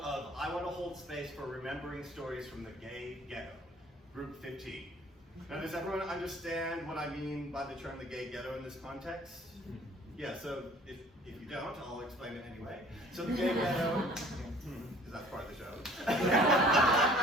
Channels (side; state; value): both; normal; correlation 0.52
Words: of I want to hold space for remembering stories from the gay ghetto, group 15. Now, does everyone understand what I mean by the term the gay ghetto in this context? Yeah, so if you don't, I'll explain it anyway. So the gay ghetto, is that part of the show?